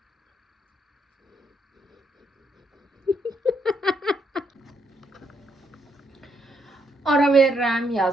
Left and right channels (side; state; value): both; normal; correlation 0.76